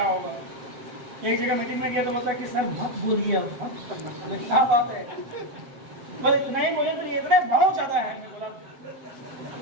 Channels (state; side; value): late; left; 8.0 ms